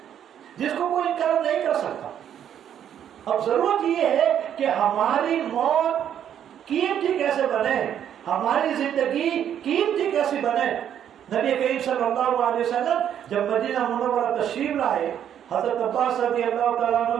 جس کو کوئی انکار نہیں کر سکتا۔ اب ضرورت یہ ہے کہ ہماری موت قیمتی کیسے بنے، ہماری زندگی قیمتی کیسے بنے۔ نبی کریم صلی اللہ علیہ وسلم جب مدینہ منورہ تشریف لائے، حضرت عباس رضی اللہ تعالیٰ عنہ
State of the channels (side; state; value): left; quieter; 9.6 dB